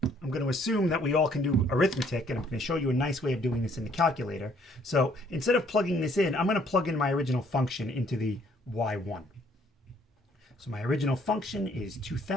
I'm going to assume that we all can do arithmetic, and I'm going to show you a nice way of doing this in the calculator. So instead of plugging this in, I'm going to plug in my original function into the y1. So my original function is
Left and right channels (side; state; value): both; normal; correlation 0.64